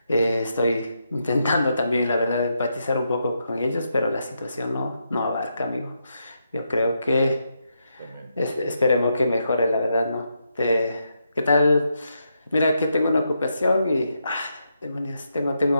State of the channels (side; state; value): both; inverted; correlation -0.82